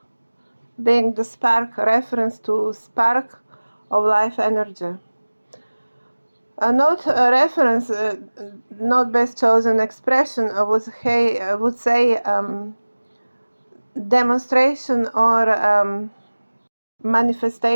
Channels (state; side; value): inverted; both; correlation -1.00